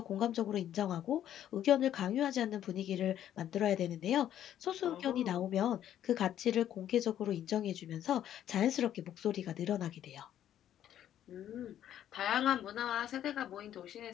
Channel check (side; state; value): right; quieter; 11.0 dB